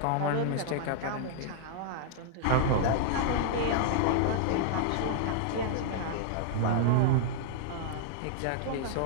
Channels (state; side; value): different; both; correlation -0.01